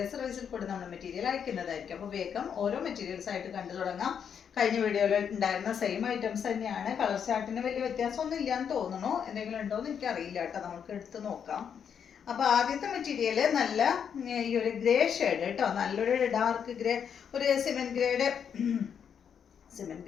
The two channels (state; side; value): quieter; right; 7.7 dB